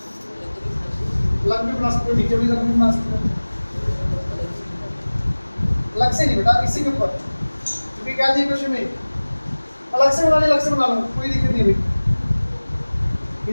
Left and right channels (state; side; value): inverted; both; correlation -1.00